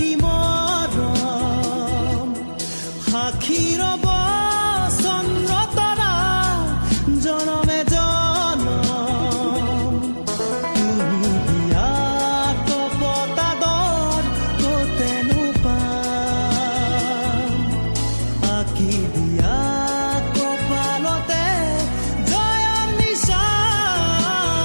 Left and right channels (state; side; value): inverted; both; correlation -1.00